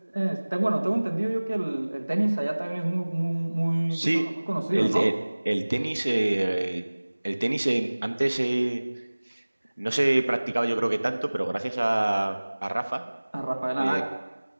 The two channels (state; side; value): inverted; both; correlation -1.00